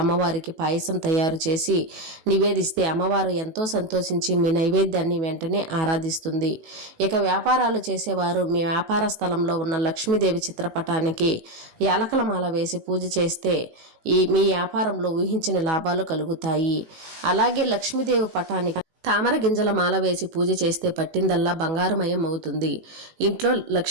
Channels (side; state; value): left; late; 18 ms